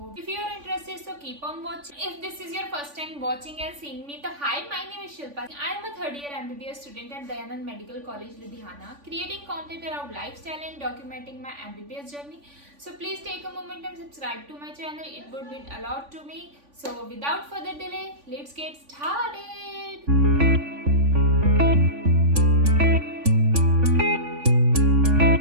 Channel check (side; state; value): left; late; 3.5 ms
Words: if you are interested so keep on watching. If this is your first time watching and seeing me तो hi, my name is Shilpa. I am a third year MBBS student at Dayanand medical college Ludhiana, creating content around lifestyle and documenting my MBBS journey. So please take a moment and subscribe to my channel. It would mean a lot to me. So without further delay, let's get started.